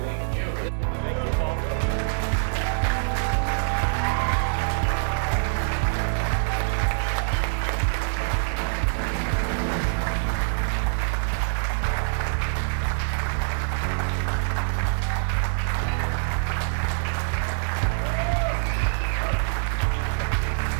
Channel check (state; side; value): silent; left; digital silence